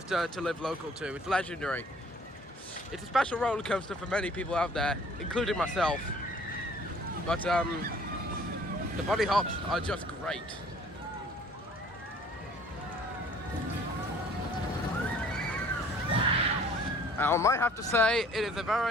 to live local to. It's legendary. It's a special roller coaster for many people out there, including myself. But the bunny hops are just great. I might have to say it is a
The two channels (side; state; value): both; normal; correlation 0.54